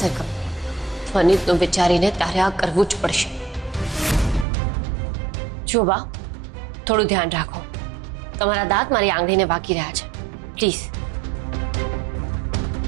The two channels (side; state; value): left; drops out; at 4.5 s